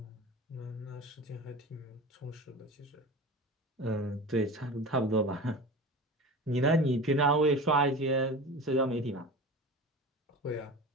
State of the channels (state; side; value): normal; both; correlation 0.33